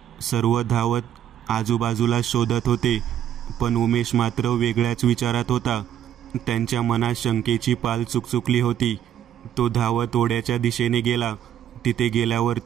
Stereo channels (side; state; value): left; quieter; 10.3 dB